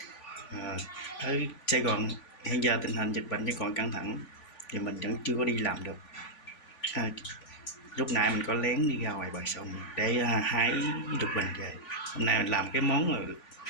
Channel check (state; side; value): late; right; 3.5 ms